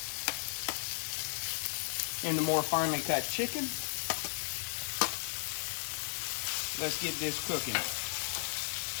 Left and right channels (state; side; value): silent; right; 54 dB below the other